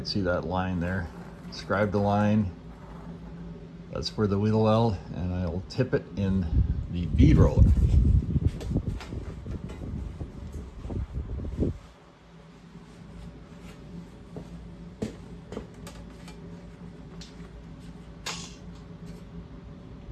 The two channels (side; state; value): both; identical; correlation 1.00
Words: see that line there. Describe the line. That's for the wheel well, and I'll tip it in the bead roller.